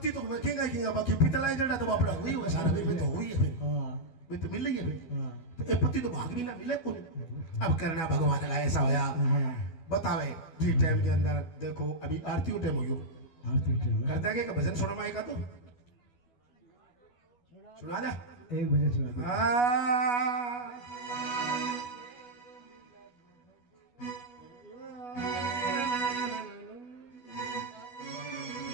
तो वेखेगा किंगा बाकी पितला जड़ा तो बापड़ा हुई है सारा में तो हुई है फिर हाँ वे तो मिल रही है फिर हाँ तो ये पति तो भाग भी ना मिले कोनी अब करना भगवान का ऐसा होया हाँ बतावे जी टाइम के अंदर देखो अभी आरती टाइम हो गयो आरती टाइम है। करता है कि भजन सुना माई का तो सुना दे एक बजे सुना दो।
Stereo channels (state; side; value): late; right; 12 ms